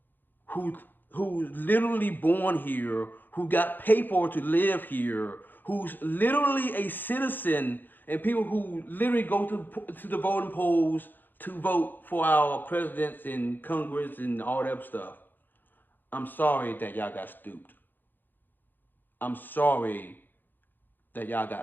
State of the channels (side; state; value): right; late; 0.090 ms